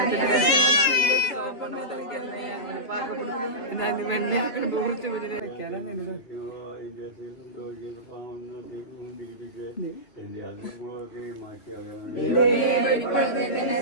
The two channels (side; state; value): right; late; 2.9 ms